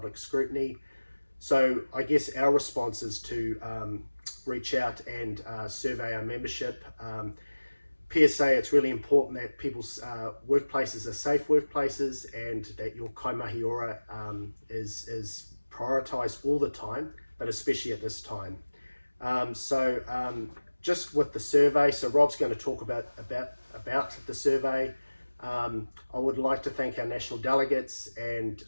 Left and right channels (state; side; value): inverted; both; correlation -1.00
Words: scrutiny. So I guess our response is to reach out and survey our membership. PSA, it's really important that people's workplaces are safe workplaces and that your kaimahi ora is prioritised all the time, but especially at this time. Just with the survey, so Rob's going to talk about the survey. I would like to thank our national delegates and